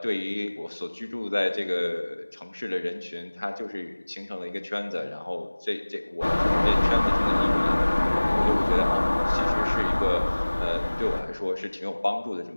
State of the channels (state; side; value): inverted; both; correlation -1.00